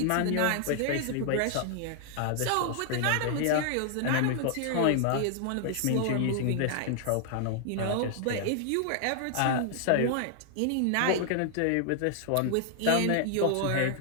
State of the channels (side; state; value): both; different; correlation 0.00